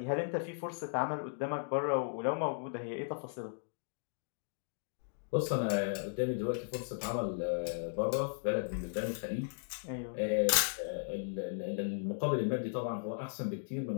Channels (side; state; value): right; silent; digital silence